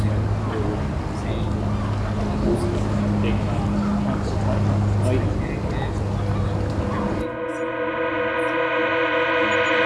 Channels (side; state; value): both; identical; correlation 1.00